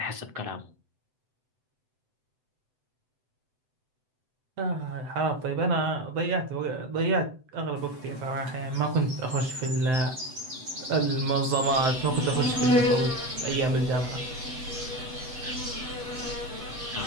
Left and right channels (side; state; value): left; late; 7.8 ms